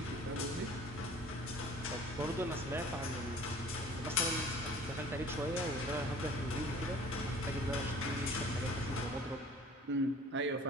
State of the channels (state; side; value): normal; both; correlation 0.48